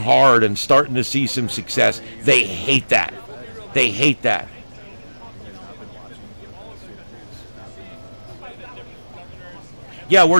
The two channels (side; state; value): both; inverted; correlation -1.00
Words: and starting to see some success, they hate that. They hate that. Yeah,